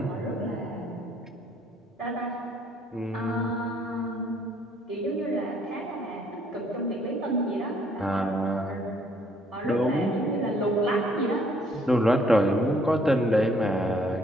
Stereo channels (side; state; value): both; normal; correlation 0.64